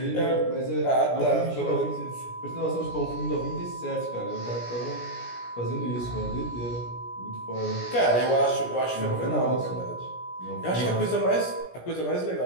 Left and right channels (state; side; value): late; right; 17 ms